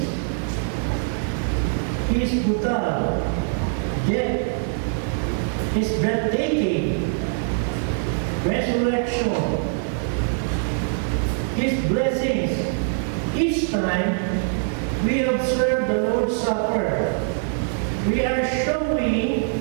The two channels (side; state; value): left; silent; 63 dB below the other